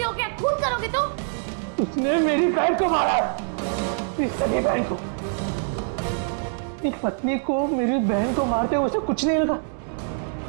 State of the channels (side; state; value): left; silent; digital silence